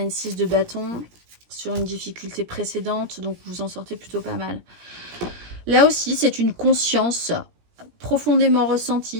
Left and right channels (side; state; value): left; late; 17 ms